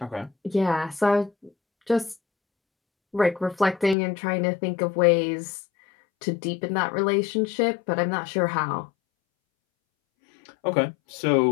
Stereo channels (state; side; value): drops out; right; at 4.0 s